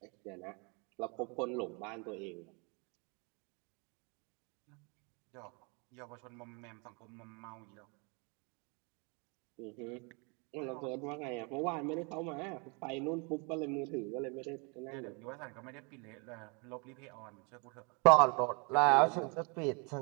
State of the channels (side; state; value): left; quieter; 32.9 dB